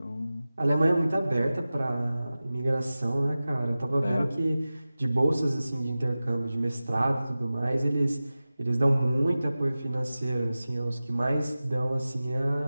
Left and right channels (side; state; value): both; inverted; correlation -0.96